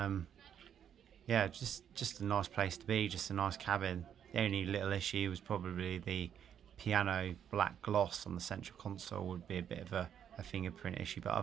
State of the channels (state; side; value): quieter; left; 9.0 dB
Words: just a nice place to be, just a nice cabin. The only little issue was probably the piano black gloss on the central console would be a bit of a fingerprint issue, but